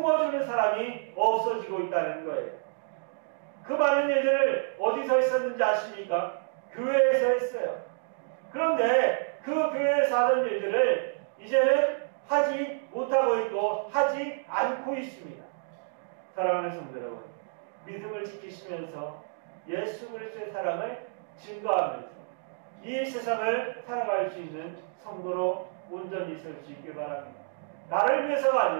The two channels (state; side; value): silent; left; digital silence